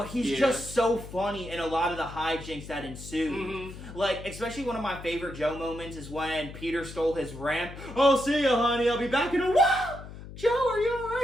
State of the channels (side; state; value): left; noise; hum, 13 dB below the sound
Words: he's just so funny in a lot of the hijinks that ensue. Mm-hmm. Like, especially one of my favorite Joe moments is when Peter stole his ramp. Oh, see ya, honey. I'll be back in a while. Joe, are you